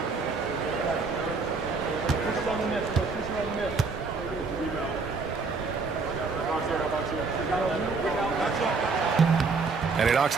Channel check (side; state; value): left; quieter; 4.4 dB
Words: And he knocks